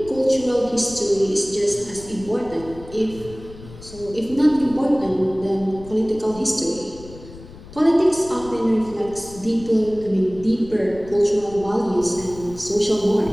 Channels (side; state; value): left; noise; rumble, 17 dB below the sound